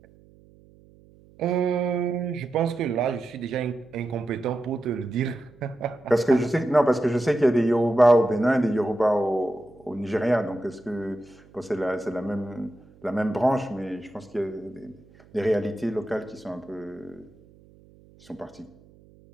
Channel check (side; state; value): right; noise; hum, 26 dB below the sound